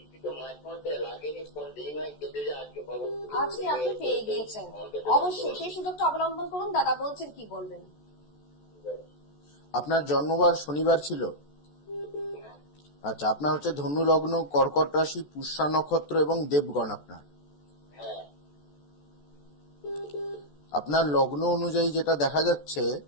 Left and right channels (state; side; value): late; right; 14 ms